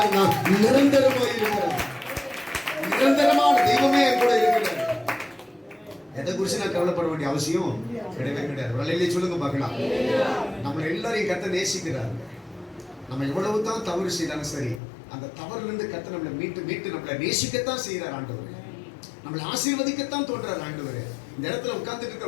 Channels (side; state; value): right; drops out; at 14.8 s